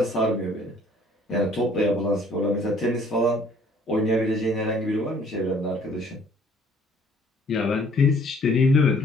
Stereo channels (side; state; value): both; normal; correlation 0.58